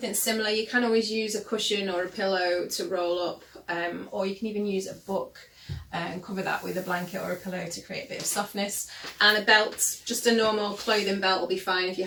similar, you can always use a cushion or a pillow to roll up, or you can even use a book and cover that with a blanket or a pillow to create a bit of softness. And a belt, just a normal clothing belt, will be fine if you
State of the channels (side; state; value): both; identical; correlation 1.00